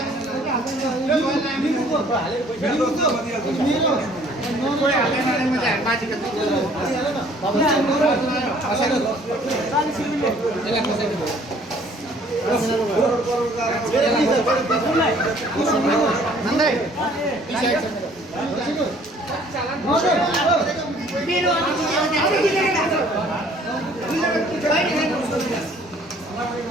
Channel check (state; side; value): normal; both; correlation 0.57